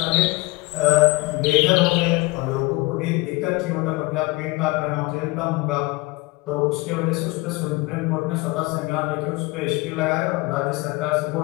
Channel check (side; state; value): right; quieter; 23.4 dB